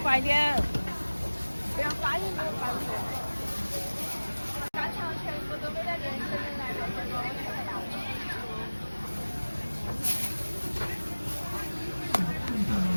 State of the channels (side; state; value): both; inverted; correlation -1.00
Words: 快点。不要发音都发不出来。干肠全部都给他连起来了，